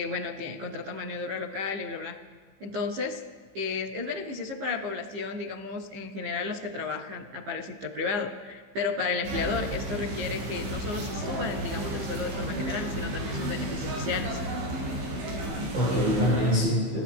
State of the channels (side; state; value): left; late; 15 ms